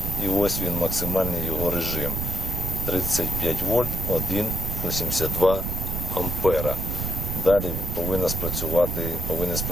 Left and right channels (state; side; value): noise; right; rumble, 3 dB below the sound